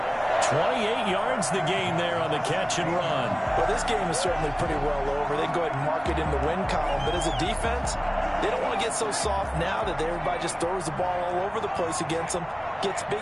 28 yards the gain there on the catch and run. Well, this game is certainly pretty well over. They can go ahead and mark it in the win column. But as a defense, they don't want to get so soft now that everybody just throws the ball all over the place against them, gets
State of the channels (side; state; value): both; identical; correlation 1.00